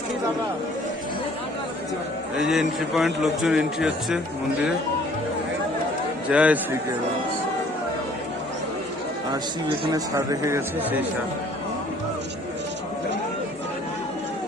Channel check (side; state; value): both; normal; correlation 0.56